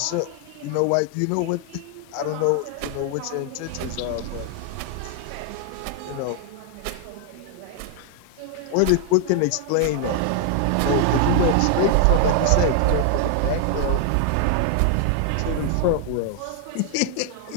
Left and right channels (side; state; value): both; different; correlation 0.00